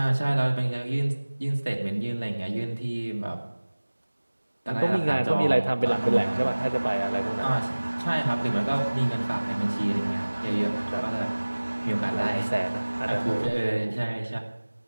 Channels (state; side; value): inverted; both; correlation -1.00